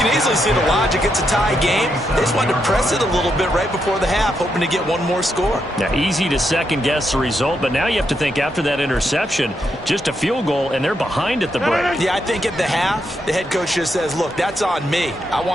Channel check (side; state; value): both; normal; correlation 0.81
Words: easily see the logic. It's a tie game. They just wanted to press it a little bit right before the half, hoping to get one more score. Now, easy to second-guess the result, but now you have to think after that interception, just a field goal, and they're behind at the break. Yeah, I think at the half, the head coach just says, look, that's on me. I